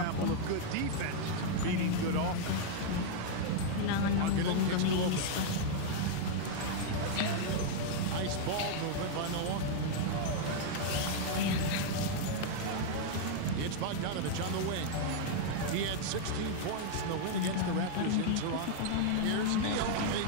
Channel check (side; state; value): both; different; correlation -0.01